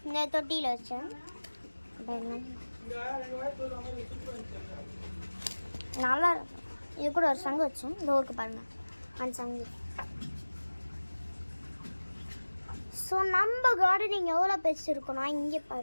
இந்த தொட்டியில் வச்சேன். பாருங்கள் நல்லா இருக்கும். இது கூட ஒரு சங்கு வச்சோம். இந்த ஊருக்கு பாருங்கள் அந்த சங்கு. ஸோ நம்ம கார்டனிங் எவ்வளோ பெருசு இருக்குன்னா, இங்கே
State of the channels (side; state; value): both; inverted; correlation -1.00